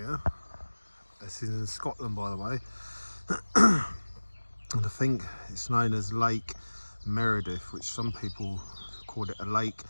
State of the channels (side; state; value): both; inverted; correlation -1.00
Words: This is in Scotland, by the way, and I think it's known as Lake Menteith, which some people call it a lake,